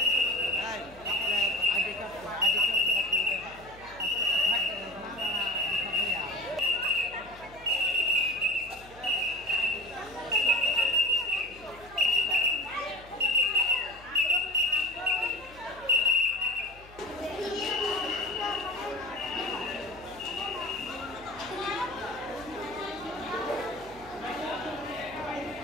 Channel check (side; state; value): left; noise; hum, 22 dB below the sound